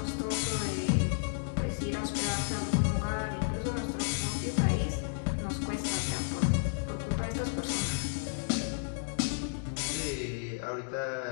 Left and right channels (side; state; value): right; silent; digital silence